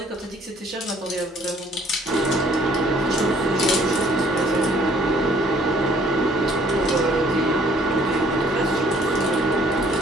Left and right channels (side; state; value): both; normal; correlation 0.60